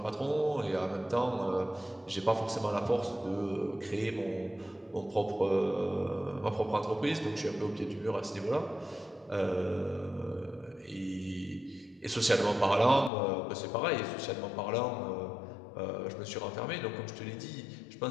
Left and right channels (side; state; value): right; drops out; at 13.1 s